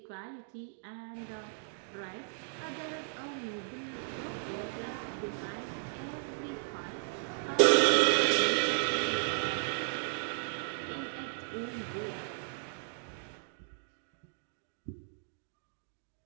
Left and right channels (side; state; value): left; silent; digital silence